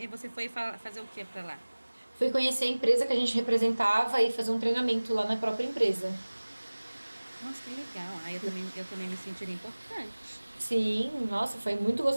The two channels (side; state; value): both; inverted; correlation -1.00